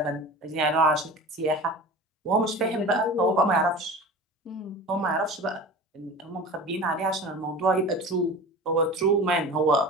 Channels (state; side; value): normal; both; correlation 0.35